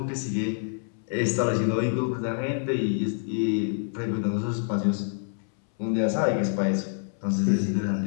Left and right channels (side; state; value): right; silent; 60 dB below the other